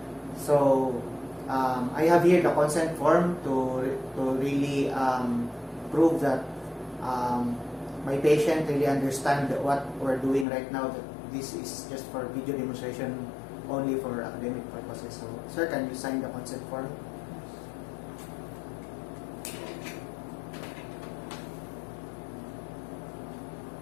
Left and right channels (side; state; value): right; drops out; at 10.5 s